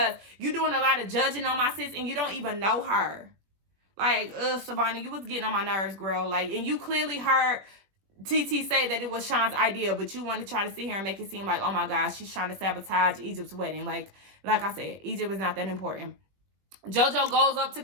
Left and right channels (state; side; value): late; left; 21 ms